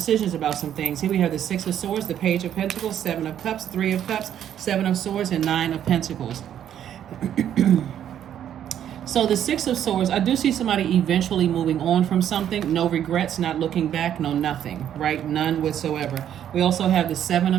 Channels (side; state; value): left; quieter; 10.1 dB